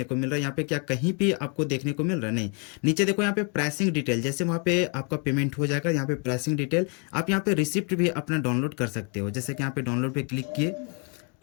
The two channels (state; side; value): quieter; right; 36.1 dB